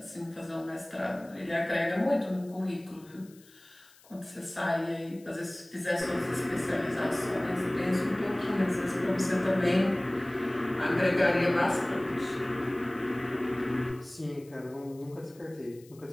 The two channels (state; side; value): noise; left; hiss, 26 dB below the sound